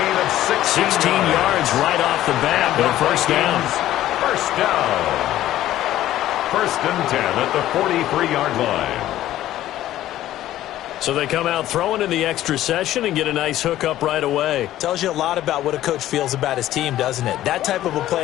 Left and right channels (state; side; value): quieter; right; 13.7 dB